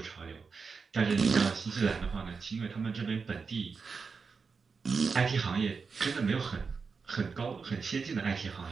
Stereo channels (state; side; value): quieter; left; 5.1 dB